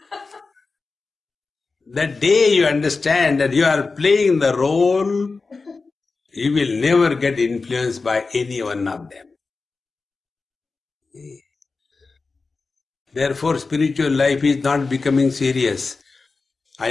The day you understand that you are playing the role, you will never get influenced by any one of them. Therefore, spiritual life is not becoming serious.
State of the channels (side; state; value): right; quieter; 4.1 dB